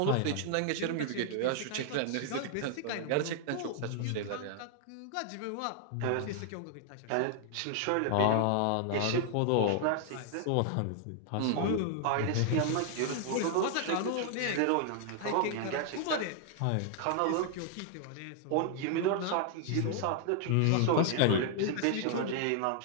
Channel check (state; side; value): different; both; correlation 0.00